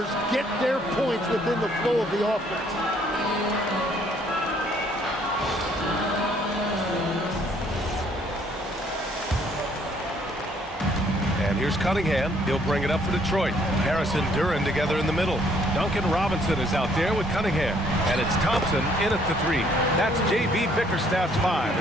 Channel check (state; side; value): normal; both; correlation 0.64